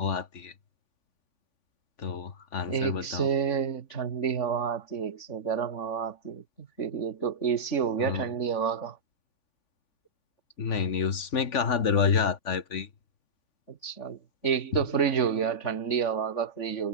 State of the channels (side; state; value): right; late; 3.5 ms